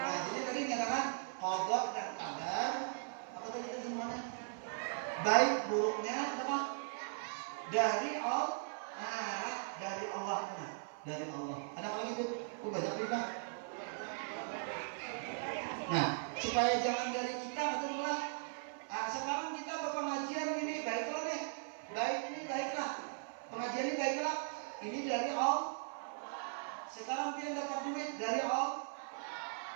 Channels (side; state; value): left; silent; 52 dB below the other